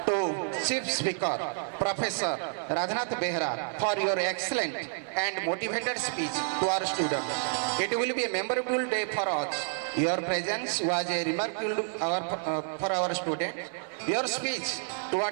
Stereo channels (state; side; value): silent; left; 58 dB below the other